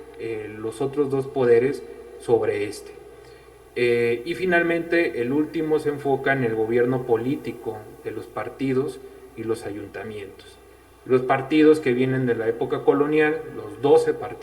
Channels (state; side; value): identical; both; correlation 1.00